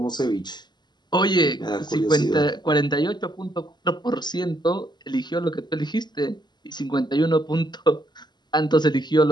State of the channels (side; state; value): right; late; 0.21 ms